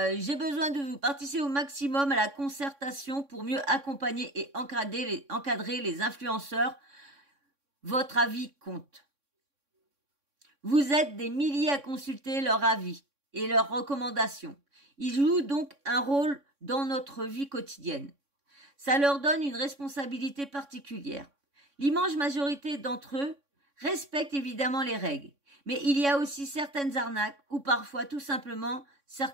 j'ai besoin de vous participer au maximum à la concertation pour mieux accompagner et encadrer les influenceurs. Votre avis compte. Vous êtes des milliers à consulter leur avis et leurs recommandations. Ils jouent donc un rôle dans notre vie quotidienne. Ça leur donne une responsabilité particulière. L'immense majorité d'entre eux respectent évidemment les règles, mais il y a aussi certaines arnaques ou parfois tout simplement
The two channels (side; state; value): left; late; 3.6 ms